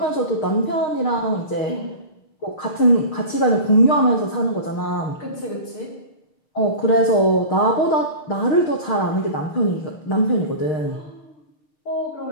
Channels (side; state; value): right; late; 6.6 ms